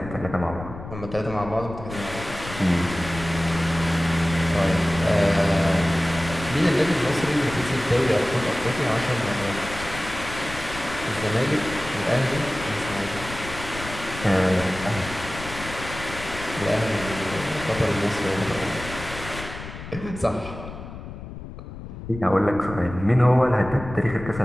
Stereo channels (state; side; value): noise; left; rumble, 11 dB below the sound